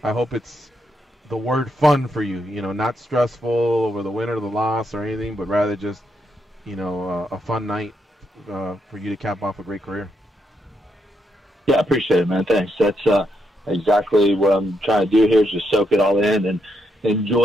hope it's the word fun for you, you know, not stressful over the win or the loss or anything, but rather just, you know, a fun night for you to cap off a great career. Yeah, I appreciate it, man. Thanks. That's exactly what I'm trying to do here is just soak it all in and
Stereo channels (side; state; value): both; normal; correlation 0.80